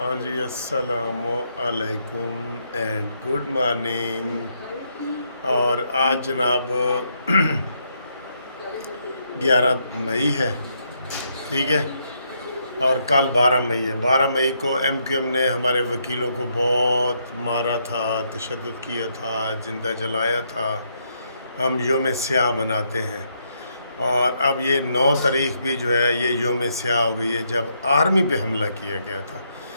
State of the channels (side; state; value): both; inverted; correlation -0.76